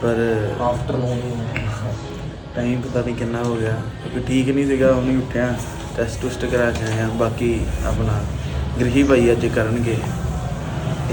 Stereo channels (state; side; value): identical; both; correlation 1.00